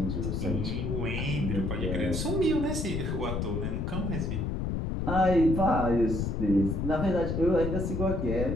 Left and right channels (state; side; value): noise; left; rumble, 1 dB below the sound